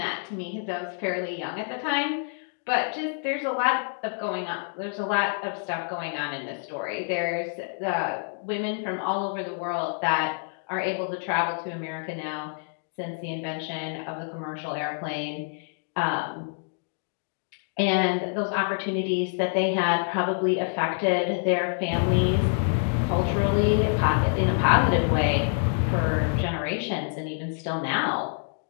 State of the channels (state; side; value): silent; right; 60 dB below the other